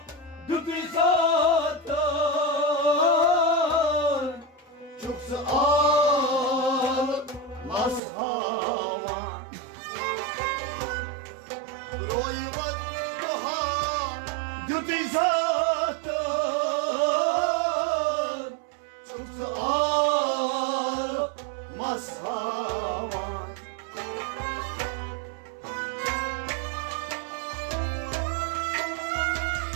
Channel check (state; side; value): drops out; left; at 8.0 s